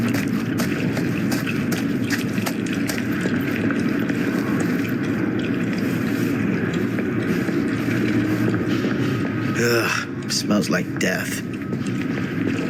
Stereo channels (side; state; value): both; identical; correlation 1.00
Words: Ugh, smells like death.